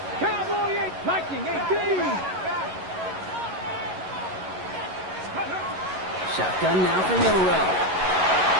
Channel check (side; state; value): left; late; 11 ms